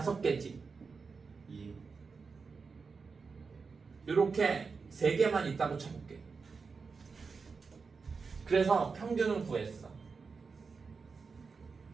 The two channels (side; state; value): left; quieter; 4.9 dB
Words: 2. 요렇게 3개만 있다고 쳐볼게. 그래서 평균을 구했어.